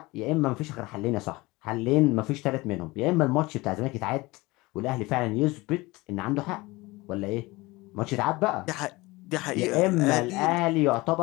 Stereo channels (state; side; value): quieter; right; 22.0 dB